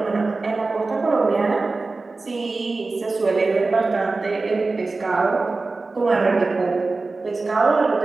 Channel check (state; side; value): quieter; left; 3.6 dB